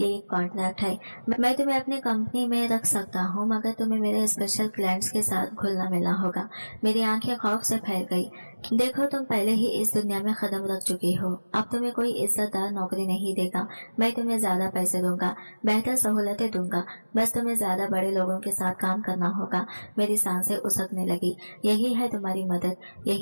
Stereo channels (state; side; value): inverted; both; correlation -1.00